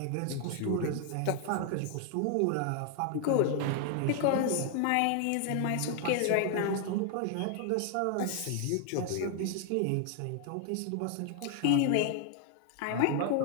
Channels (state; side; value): different; both; correlation 0.00